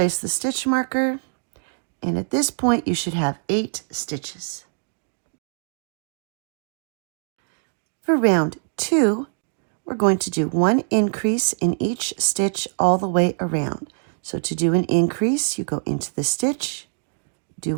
the stitch marker, and at this point you should have 8 stitches. For round 2, we're going to do 1 increase in each stitch all the way around. So to do an increase, you go into the stitch, do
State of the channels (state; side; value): silent; left; digital silence